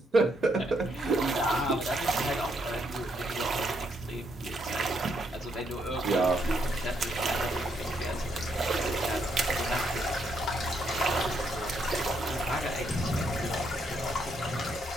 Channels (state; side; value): normal; both; correlation 0.75